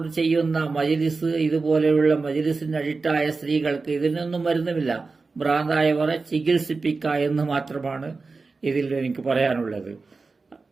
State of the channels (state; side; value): quieter; left; 4.1 dB